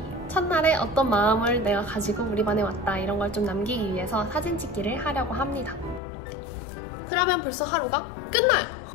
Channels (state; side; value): drops out; right; at 6.0 s